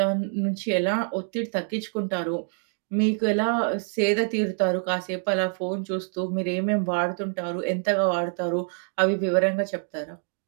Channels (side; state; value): left; silent; 61 dB below the other